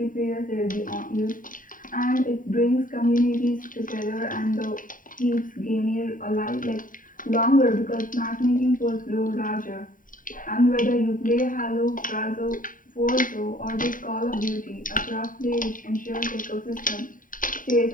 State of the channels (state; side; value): late; right; 0.39 ms